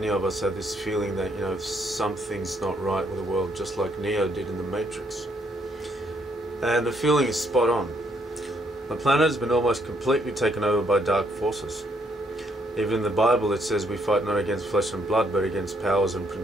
of us have this feeling that, something's not right with the world, just like Neo did in the Matrix. And the feeling is spot on. The planet has been almost completely taken over by dark forces. Even in the Bible it says we fight not against flesh and blood, but against powers and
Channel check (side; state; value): both; normal; correlation 0.71